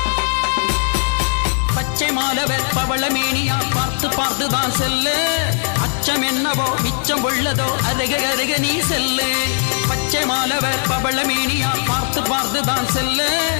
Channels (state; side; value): silent; right; digital silence